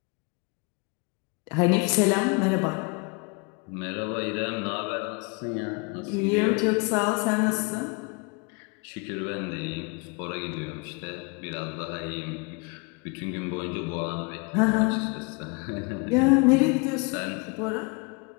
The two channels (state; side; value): quieter; right; 31.2 dB